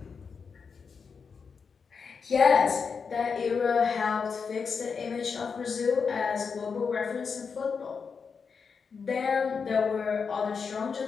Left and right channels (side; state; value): right; quieter; 5.7 dB